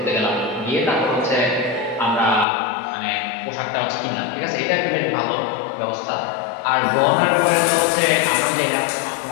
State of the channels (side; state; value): right; drops out; at 2.5 s